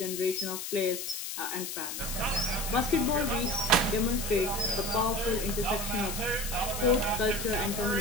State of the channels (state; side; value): noise; left; hiss, 5 dB below the sound